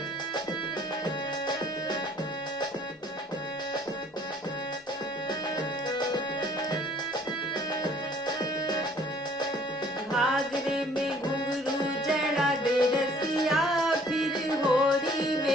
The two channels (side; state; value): both; normal; correlation 0.57